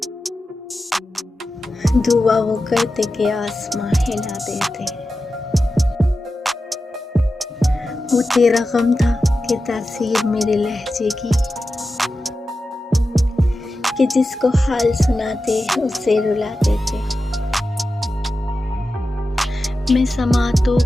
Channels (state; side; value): normal; both; correlation 0.92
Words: दुआ वो करते कि आसमां हिला देते। वो तेरा गम था कि तासीर मेरे लहजे की, कि जिसको हाल सुनाते उसे रुला देते। मैं समातों